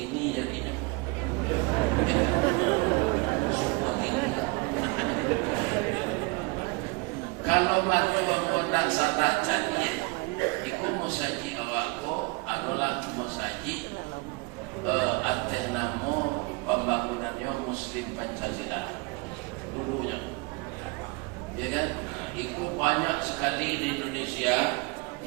jadinya. Ya kan? Semua kini. Kalau mahu nak salah jadi, ikut musaji awakku adalah musaji atas nama pembangunannya Muslim Pancasila dulunya, ya kan? Itu banyak sekali di Indonesia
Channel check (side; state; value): left; quieter; 27.1 dB